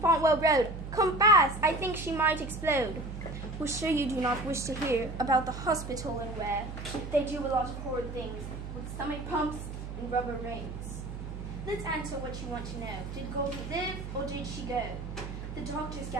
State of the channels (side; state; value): right; noise; hum, 8 dB below the sound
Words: Road. Come fast, I think she might explode. We're sure you do not wish to hear about the hospital and where they do a lot of horrid things with stomach pumps and rubber rings. Let's answer what you want to know. Did Goldie live or did she go? The doctors